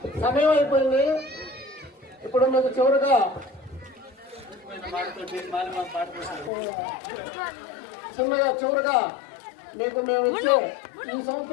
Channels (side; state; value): right; drops out; at 6.5 s